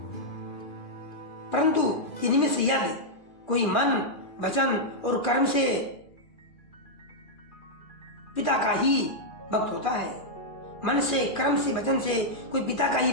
परंतु इनमें से यदि कोई मन वचन और कर्म से पिता का ही भक्त होता है, मन से कर्म से वचन से कोई पिता का ही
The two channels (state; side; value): late; right; 2.4 ms